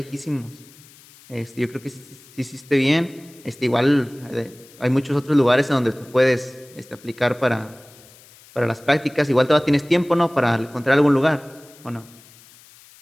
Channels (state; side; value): noise; left; hiss, 24 dB below the sound